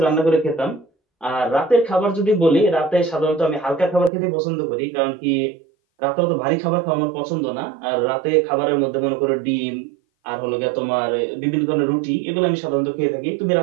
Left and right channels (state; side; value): drops out; left; at 4.1 s